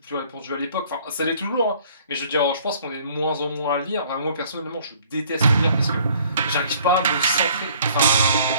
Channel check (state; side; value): inverted; both; correlation -0.57